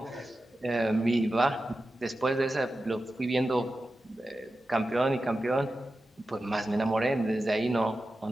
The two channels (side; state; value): both; normal; correlation 0.93